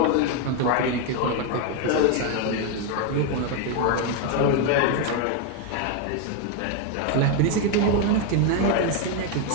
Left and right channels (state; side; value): different; both; correlation 0.01